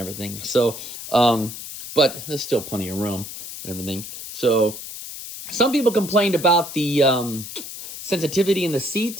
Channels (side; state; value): left; noise; hiss, 10 dB below the sound